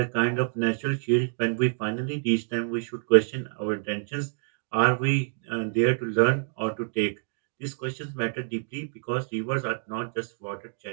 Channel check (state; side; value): silent; left; digital silence